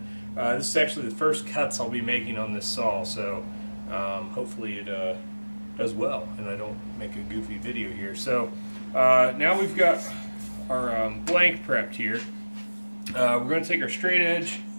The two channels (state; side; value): inverted; both; correlation -1.00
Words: This is actually the first cuts I'll be making on this saw, so hopefully it does well and I don't make a goofy video here. So now we've got our blank prepped here. We're going to take our straight edge